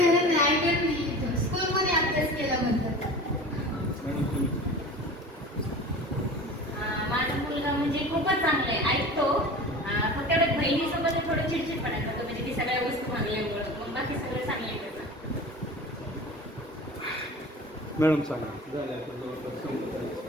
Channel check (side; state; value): both; normal; correlation 0.36